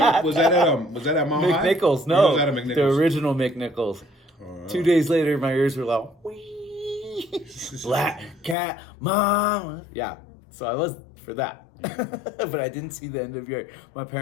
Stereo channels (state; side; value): drops out; right; at 8.6 s